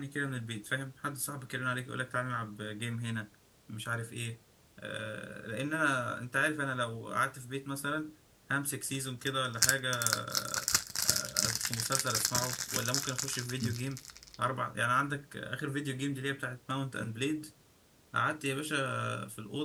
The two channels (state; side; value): identical; both; correlation 1.00